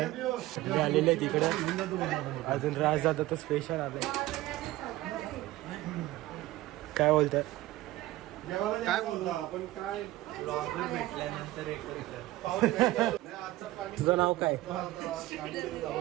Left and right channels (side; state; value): left; quieter; 17.0 dB